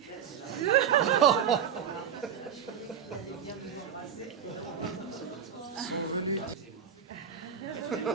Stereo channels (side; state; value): left; quieter; 8.0 dB